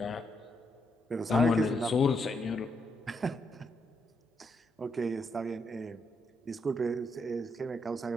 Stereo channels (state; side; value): normal; both; correlation 0.79